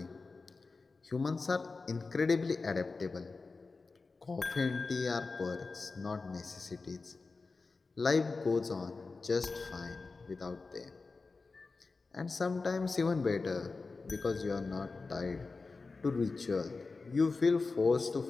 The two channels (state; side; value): quieter; right; 4.0 dB